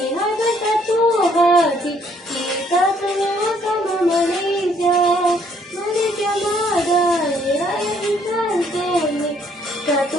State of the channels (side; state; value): both; normal; correlation 0.65